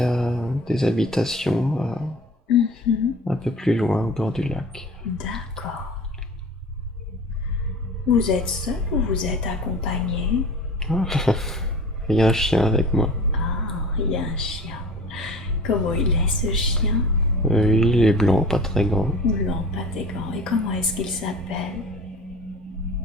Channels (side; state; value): both; normal; correlation 0.40